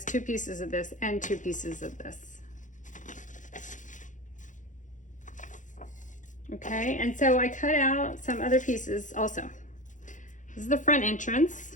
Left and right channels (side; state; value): right; late; 0.37 ms